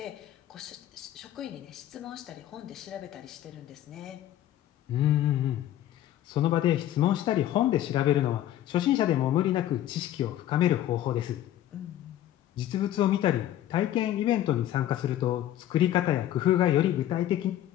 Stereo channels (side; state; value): right; quieter; 12.5 dB